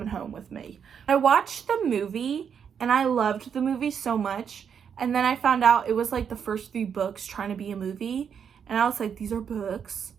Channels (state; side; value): quieter; left; 7.4 dB